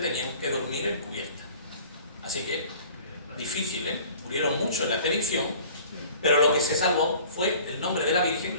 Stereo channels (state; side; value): inverted; both; correlation -0.48